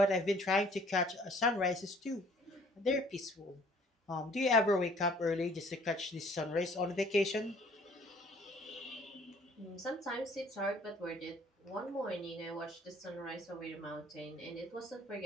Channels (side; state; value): both; normal; correlation 0.57